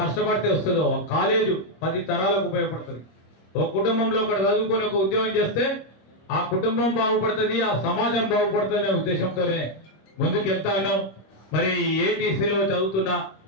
కష్టపడితే వస్తుందో, ఒక కాలేజు 10 తరాలకు ఉపయోగపడుతుంది. ఒక కుటుంబంలో ఒకటి చదువుకొని ఒక ఉద్యోగం చేస్తే ఆ కుటుంబం బాగుపడుతుంది, ఆ సమాజం బాగుపడుతుంది అనే ఉద్దేశంతోనే ముందుకు వెళ్తా ఉన్నాం. మరి ఏటీసీలో చదువుతున్న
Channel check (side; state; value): right; late; 26 ms